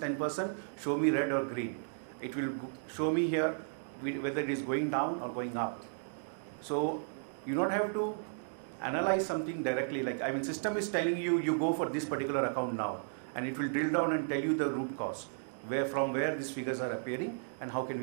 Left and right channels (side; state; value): left; silent; digital silence